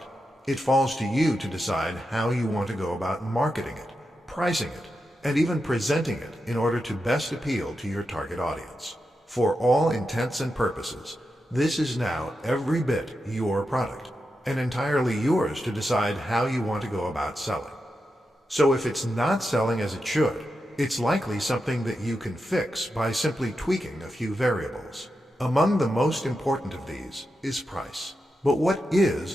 it falls to you to decide how you want to go about marketing it, pricing it, and even presenting it in order to best appeal to your target audience. For all intents and purposes, this is now every bit your product, and entirely yours to decide how you want to go about selling. So if it's not selling as it should, it's likely something that you can fix by simply tweaking a few variables. Among the most important of these is price. But what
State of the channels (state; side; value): normal; both; correlation 0.88